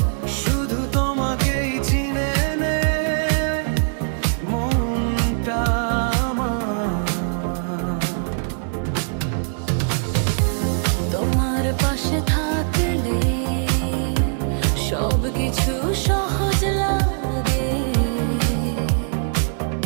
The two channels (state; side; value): silent; left; 64 dB below the other